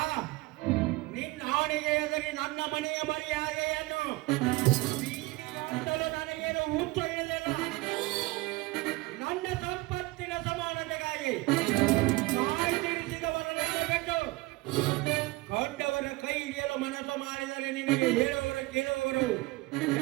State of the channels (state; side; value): quieter; left; 21.4 dB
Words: ನಿನ್ನ ಆಣೆಗೆ ಎದುರಿ ನನ್ನ ಮನೆಯ ಮರ್ಯಾದೆಯನ್ನು ಅಂತಲೂ ನನಗೇನು ಹುಚ್ಚು ಹಿಡಿದಿಲ್ಲ. ನನ್ನ ಸಂಪತ್ತಿನ ಸಮಾನತೆಗಾಗಿ ತಾಯಿ ತಿಳಿಸಿದವರನ್ನು ಬಿಟ್ಟು ಕಂಡವರ ಕೈ ಹಿಡಿಯಲು ಮನಸ್ಸು ಮಾಡಿದರೆ ನಿನಗೆ ಹೇಳುವವರು ಕೇಳುವವರು